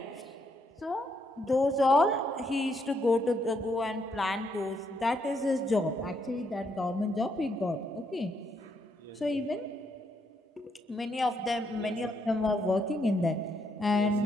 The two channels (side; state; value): both; normal; correlation 0.75